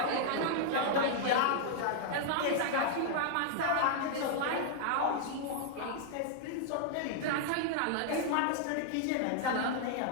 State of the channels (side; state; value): both; different; correlation -0.01